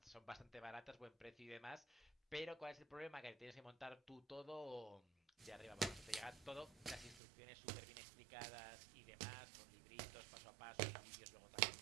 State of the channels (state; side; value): drops out; left; at 7.2 s